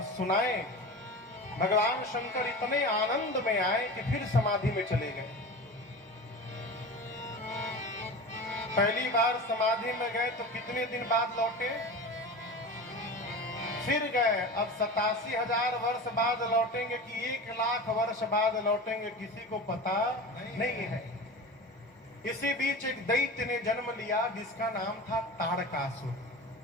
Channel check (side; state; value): both; normal; correlation 0.31